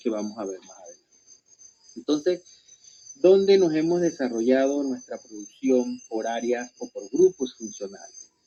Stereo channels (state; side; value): identical; both; correlation 1.00